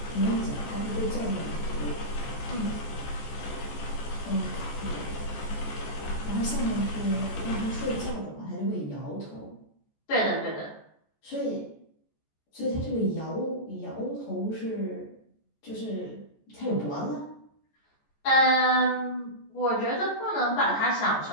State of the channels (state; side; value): late; right; 14 ms